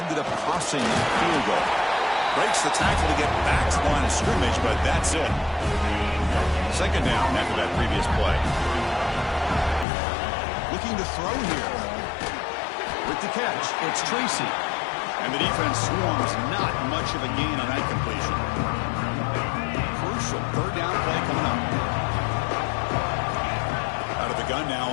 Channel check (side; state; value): right; drops out; at 9.9 s